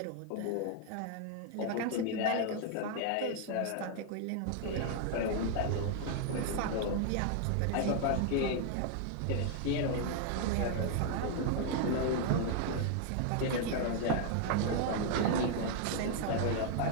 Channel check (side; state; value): both; different; correlation 0.00